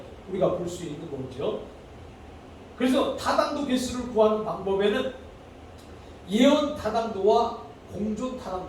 우리가 볼 수 있는 거죠. 그래서 타당도 계수를 구하는 방법에는 예언 타당도와 공존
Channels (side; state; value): both; identical; correlation 1.00